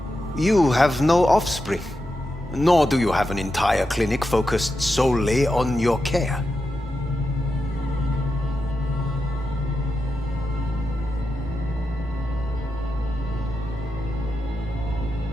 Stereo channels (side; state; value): both; normal; correlation 0.88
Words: You have no offspring, nor do you have an entire clinic focused solely on your care.